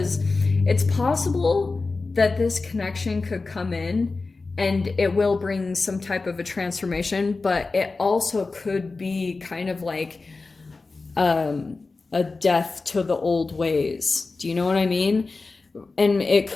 it's possible that this connection could come in and it will bring some type of a transformation, but it also could be kind of like a death to the old ways. Do you know what I mean? And it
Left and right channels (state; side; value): quieter; right; 3.8 dB